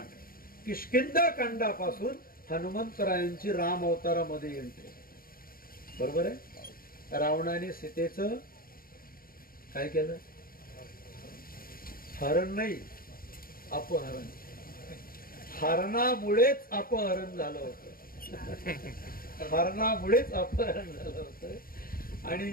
किष्किंधा कांडापासून हनुमंतरायांची राम अवतारामध्ये एंट्री. बरोबर आहे. रावणाने सीतेचं काय केलं? हरण नाही, अपहरण. हरणामुळेच अपहरण झालं होतं. हरणामुळेच अपहरण झालं होतं.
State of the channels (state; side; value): late; right; 0.42 ms